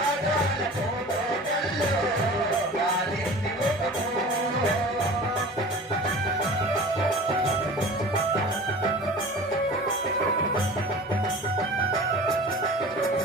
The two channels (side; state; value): both; normal; correlation 0.39